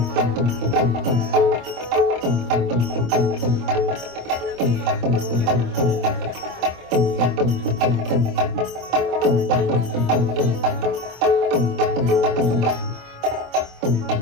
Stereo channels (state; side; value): late; left; 25 ms